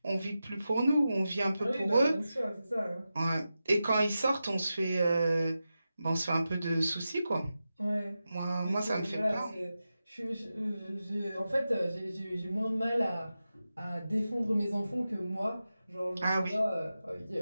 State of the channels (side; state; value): both; inverted; correlation -0.92